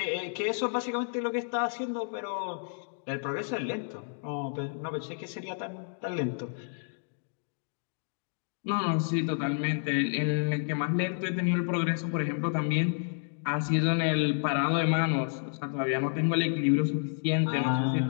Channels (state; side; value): silent; right; digital silence